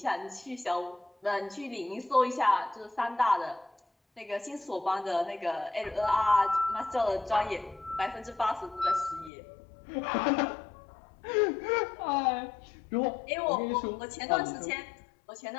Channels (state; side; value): drops out; right; at 9.3 s